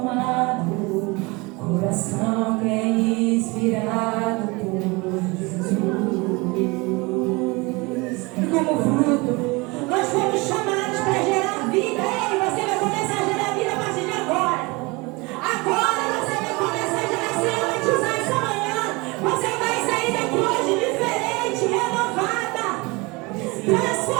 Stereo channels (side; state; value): left; quieter; 25.5 dB